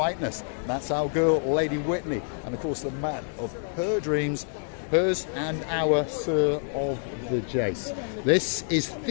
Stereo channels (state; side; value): silent; right; digital silence